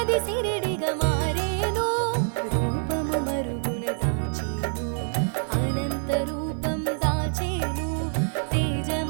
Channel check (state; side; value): silent; left; digital silence